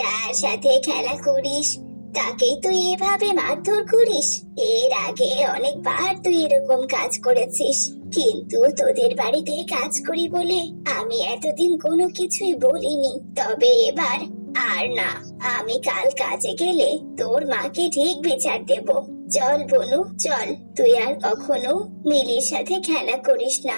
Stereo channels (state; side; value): inverted; both; correlation -1.00